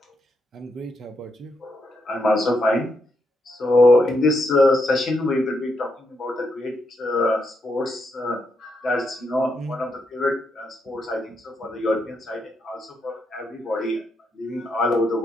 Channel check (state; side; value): normal; both; correlation 0.80